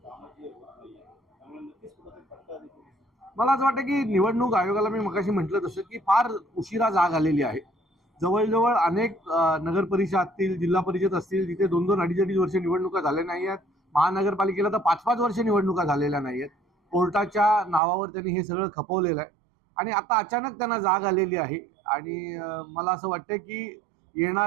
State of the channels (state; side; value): drops out; left; at 17.8 s